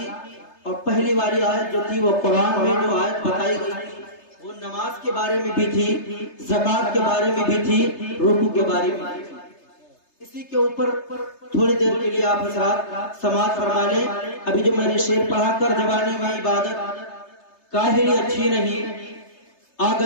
اور پہلی والی آیت جو تھی وہ قرآن میں جو آیت بتائی گئی تھی وہ نماز کے بارے میں بھی تھی، زکوٰۃ کے بارے میں بھی تھی، رکوع کے بارے میں بھی تھی۔ اسی کے اوپر تھوڑی دیر کے لیے آپ حضرات سماعت فرما لیں۔ ابھی جو میں نے شعر پڑھا کر جوانی میں عبادت کاہلی اچھی نہیں، آ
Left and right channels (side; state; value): right; late; 3.3 ms